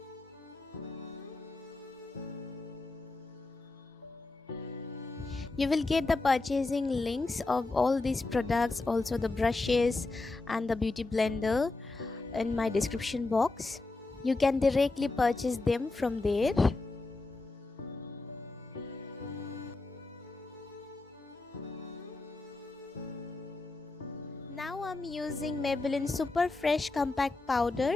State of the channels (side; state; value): right; quieter; 3.4 dB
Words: You will get the purchasing links of all these products, also the brushes and the beauty blender, in my description box. You can directly purchase them from there. Now I'm using Maybelline Super Fresh Compact